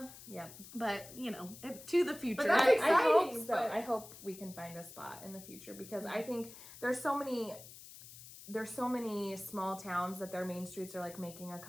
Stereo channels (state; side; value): noise; left; hiss, 16 dB below the sound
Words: Yeah. But, you know, to the future. But that's I exciting, hope so. but- I hope we can find a spot in the future because I think there's so many small towns that their main streets are like making a